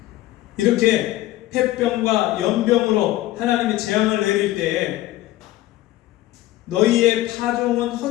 이렇게 폐병과 연병으로 하나님이 재앙을 내릴 때에 너희의 파종은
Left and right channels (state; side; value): quieter; right; 16.1 dB